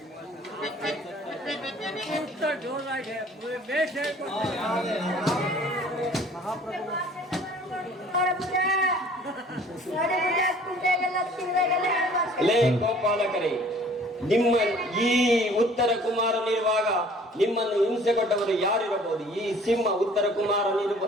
ಗೋಪಾಲಕರೇ, ನಿಮ್ಮ ಈ ಉತ್ತರ ಕುಮಾರನಿರುವಾಗ ನಿಮ್ಮನ್ನು ಹಿಂಸೆ ಕೊಟ್ಟವರು ಯಾರಿರಬಹುದು? ಈ ಸಿಂಹ ಉತ್ತರ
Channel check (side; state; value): both; normal; correlation 0.52